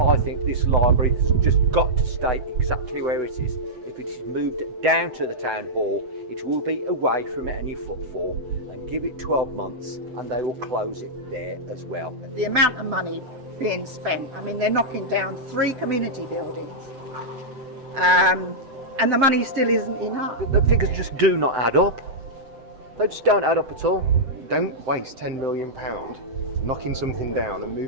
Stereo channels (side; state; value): left; late; 7.9 ms